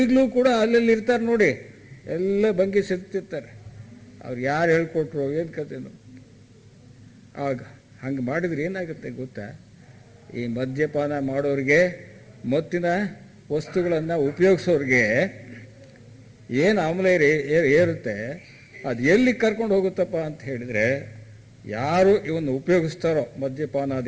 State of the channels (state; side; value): identical; both; correlation 1.00